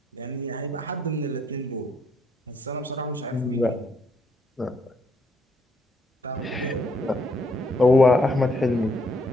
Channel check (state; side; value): normal; both; correlation 0.71